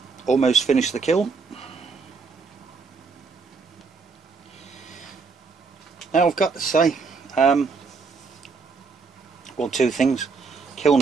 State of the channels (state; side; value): quieter; left; 4.7 dB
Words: Almost finished the kiln. Now I've got to say, well, two things. Kiln